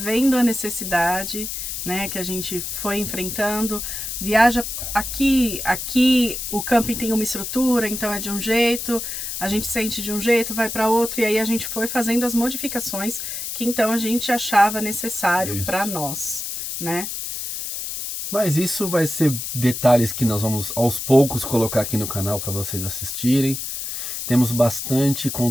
a necessidade, né, que a gente foi enfrentando. Viaja aqui o camping tem uma estrutura, então é de um jeito, a gente sente de um jeito, vai para outro, e aí a gente foi fazendo as modificações que então a gente achava necessário para nós, né? Mas isso vai ser detalhes que nós vamos aos poucos colocar aqui no canal para vocês assistirem. Temos bastante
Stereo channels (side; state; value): left; noise; hiss, 5 dB below the sound